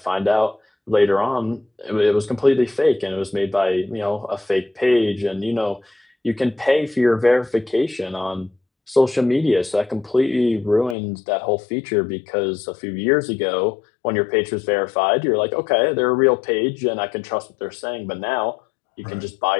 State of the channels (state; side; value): drops out; right; at 11.0 s